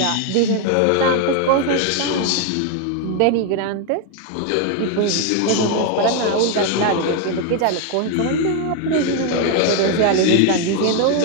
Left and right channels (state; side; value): different; both; correlation 0.01